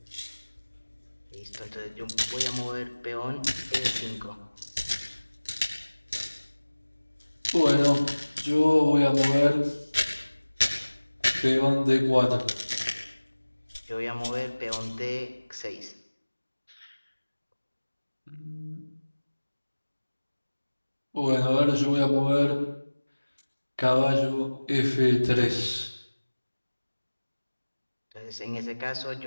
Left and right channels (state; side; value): inverted; both; correlation -1.00